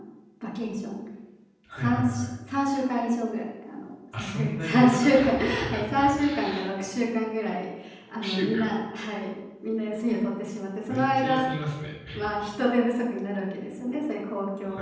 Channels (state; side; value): identical; both; correlation 1.00